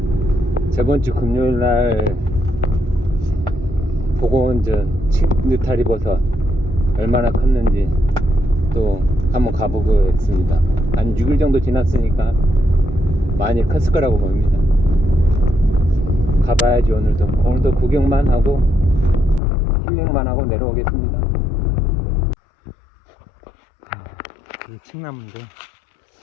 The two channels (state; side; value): drops out; right; at 19.4 s